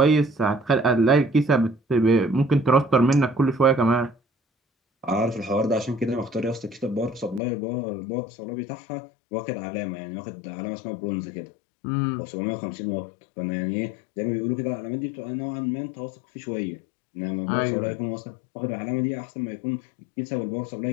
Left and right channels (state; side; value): drops out; right; at 7.4 s